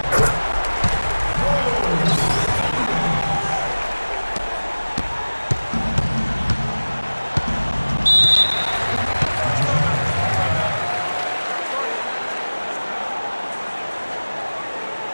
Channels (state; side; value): inverted; both; correlation -1.00